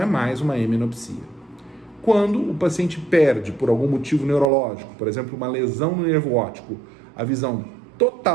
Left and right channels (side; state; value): left; drops out; at 4.5 s